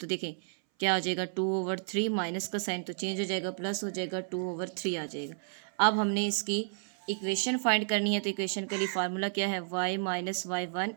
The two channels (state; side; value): silent; left; 57 dB below the other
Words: देखें क्या आ जाएगा 2/3, माइनस का साइन तो चेंज हो जाएगा, प्लस हो जाएगा 2/3 आ जाएगा। अब हमने इसकी इक्वेशन फाइंड करनी है, तो इक्वेशन के लिए फार्मूला क्या है, y minus y1